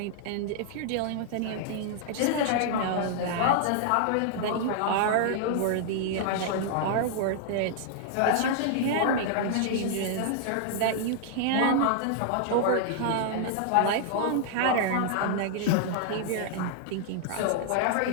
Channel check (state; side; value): different; both; correlation -0.01